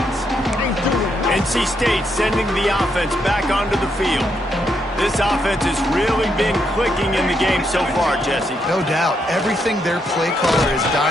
NC State sending the offense back onto the field. This offense has really been clicking in the game so far, Jesse. No doubt. Everything their play caller is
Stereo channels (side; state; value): both; normal; correlation 0.78